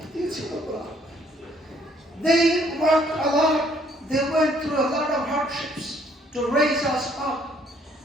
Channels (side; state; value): both; normal; correlation 0.64